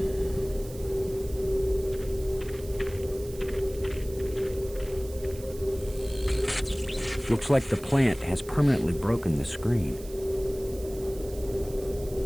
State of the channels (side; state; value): right; noise; hiss, 18 dB below the sound